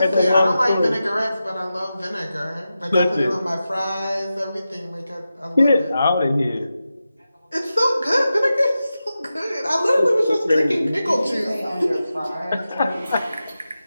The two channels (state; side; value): inverted; both; correlation -0.92